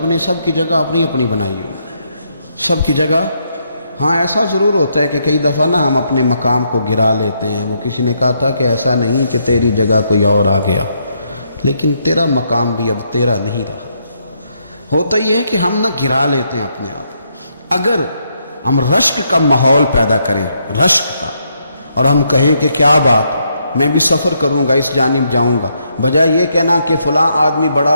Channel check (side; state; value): both; inverted; correlation -0.76